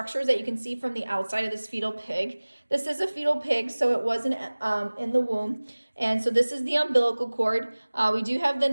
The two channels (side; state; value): both; inverted; correlation -1.00